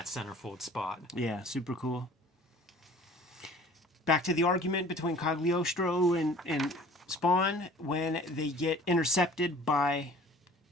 centerfold spot. Yeah, super cool. Back to the argument between Cagliostro and Spawn when they get intercepted by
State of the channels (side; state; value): both; normal; correlation 0.48